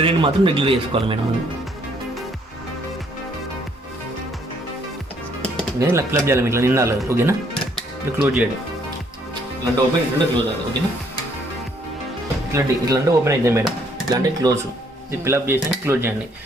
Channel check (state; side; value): normal; both; correlation 0.66